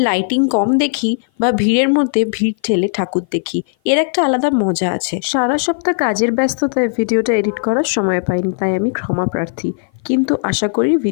লাইটিং কম দেখি বা ভিড়ের মধ্যে ভিড় ঠেলে ঠাকুর দেখি, এর একটা আলাদা মজা আছে। সারা সপ্তাহ কাজের ব্যস্ততায় ভিডিওটা এডিট করার সময় পাইনি, তাই আমি ক্ষমা প্রার্থী। কিন্তু আশা করি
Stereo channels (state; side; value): silent; right; 55 dB below the other